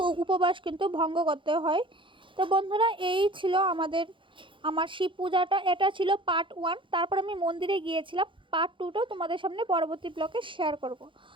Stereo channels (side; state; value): left; late; 0.24 ms